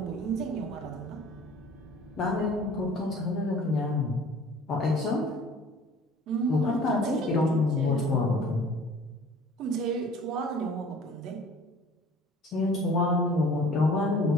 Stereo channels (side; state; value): both; normal; correlation 0.49